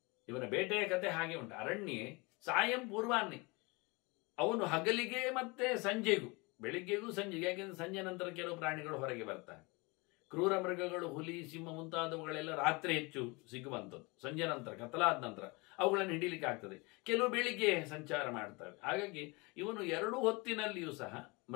ಇವನ ಬೇಟೆಯ ಕತೆ ಹಾಗೆ ಉಂಟು. ಅರಣ್ಯ ಸಾಯಂ ಪೂರ್ವಾನ್ನೇ, ಅವನು ಹಗಲಿಗೆ ಮತ್ತೆ ಸಂಜೆಗೂ, ಬೆಳಿಗ್ಗೆಗೂ ಸಂಜೆಗೆ, ಯಾಕೆಂದ್ರೆ ಸಂಜೆ ನಂತರ ಕೆಲವು ಪ್ರಾಣಿಗಳು ಹೊರಗೆ ಬರ್ತಾರೆ. ಕ್ರೂರ ಮೃಗಗಳು, ಹುಲಿ, ಸಿಂಹ ಮುಂತಾದವುಗಳೆಲ್ಲ ರಾತ್ರಿ ಹೆಚ್ಚು ಸಿಗುವಂಥದ್ದು. ಸಂಜೆ ನಂತರ, ಕತ್ತಲಾದ ನಂತರ ಅವುಗಳನ್ನು ಹಿಡಿಲಿಕ್ಕೆ ಆಗ್ತದೆ. ಕೆಲವು ಬೆಳಿಗ್ಗೆ ಸಂಚಾರ ಮಾಡ್ತವೆ. ಹಾಗಾಗಿ ಇವನು 2 ಹೊತ್ತಿನಲ್ಲಿಯೂ ಸಹ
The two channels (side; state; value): right; quieter; 26.9 dB